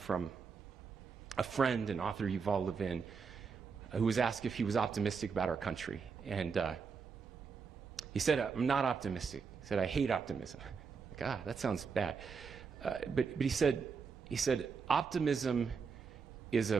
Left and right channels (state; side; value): quieter; left; 5.6 dB